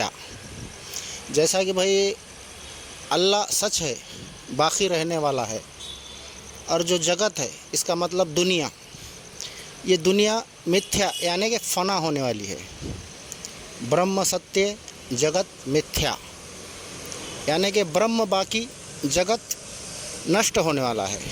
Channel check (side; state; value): both; identical; correlation 1.00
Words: جیسا کہ بھئی اللہ سچ ہے، باقی رہنے والا ہے، اور جو جگت ہے اس کا مطلب دنیا، یہ دنیا متھیا یعنی کہ فنا ہونے والی ہے۔ برہم ستیہ جگت متھیا یعنی کہ برہم باقی، جگت نشٹ ہونے والا ہے۔